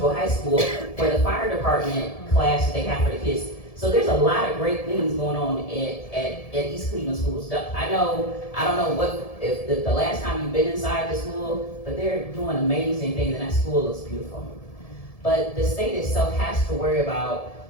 High School for the fire department class that they have for the kids. So there's a lot of great things going on at East Cleveland schools. I don't know if the last time you've been inside the school, but they're doing amazing things, and that school looks beautiful. But the state itself has to worry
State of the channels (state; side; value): late; right; 1.7 ms